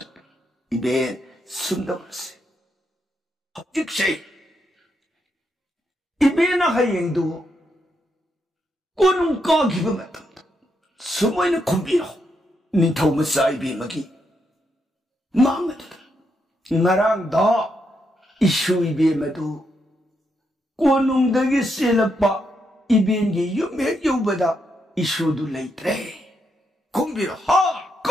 इबे सुंदरसे हजिक से इबे ना हायंदु कोनुं का गिब मतम सुमोइन खुंबिरो निथौ मसा इबे मगी मांगत नरांग दा इशु इबे मधु कोनुंगदगी सेलपा इबेंगी युमे युबदा इशु दु लेत्रे खुंबिर हा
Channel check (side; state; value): both; normal; correlation 0.81